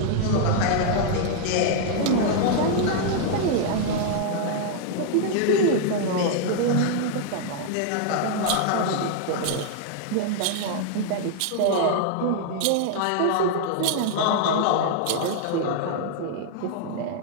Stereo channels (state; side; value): different; both; correlation -0.01